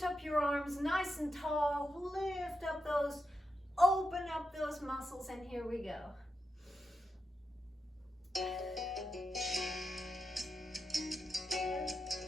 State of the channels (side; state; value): both; normal; correlation 0.88